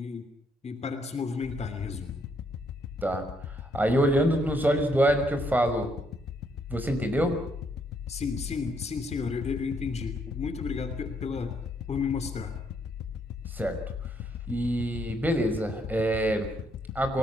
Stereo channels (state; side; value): normal; both; correlation 0.72